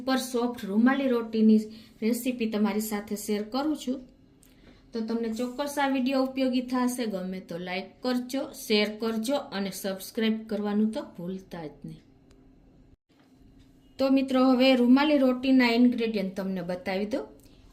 સોફ્ટ રૂમાલી રોટીની રેસીપી તમારી સાથે શેર કરું છું। તો તમને ચોક્કસ આ વિડીયો ઉપયોગી થશે। ગમે તો લાઈક કરજો, શેર કરજો અને સબસ્ક્રાઇબ કરવાનું તો ભૂલતા જ નહીં। તો મિત્રો હવે રૂમાલી રોટીના ઇન્ગ્રેડિયન્ટ તમને બતાવી દો।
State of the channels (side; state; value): both; identical; correlation 1.00